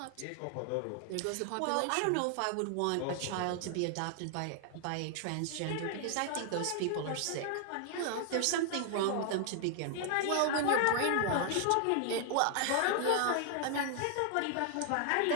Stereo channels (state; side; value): different; both; correlation 0.00